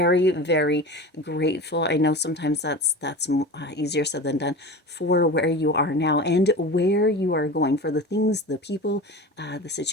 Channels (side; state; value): both; normal; correlation 0.32